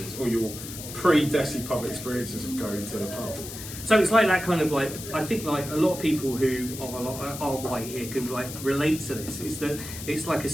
or your pre-Desi Pub experiences of going to the pub? So it's like that kind of like, I think like a lot of people who are white here can like relate to this, is that it's like a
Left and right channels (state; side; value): noise; left; hiss, 10 dB below the sound